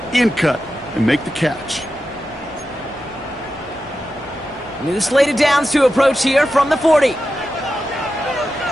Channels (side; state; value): right; noise; hum, 27 dB below the sound